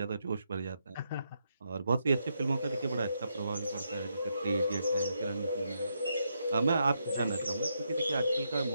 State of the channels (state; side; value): inverted; both; correlation -0.80